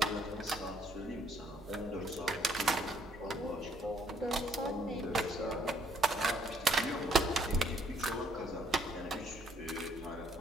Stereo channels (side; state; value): both; normal; correlation 0.66